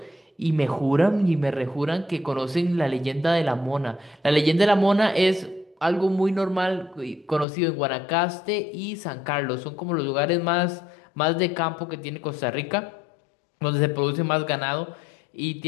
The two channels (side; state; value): right; drops out; at 7.5 s